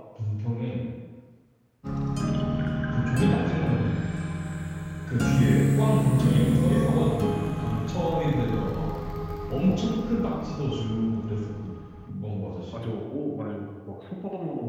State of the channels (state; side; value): identical; both; correlation 1.00